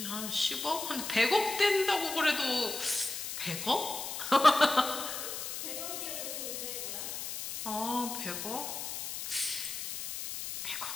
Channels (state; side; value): noise; left; hiss, 5 dB below the sound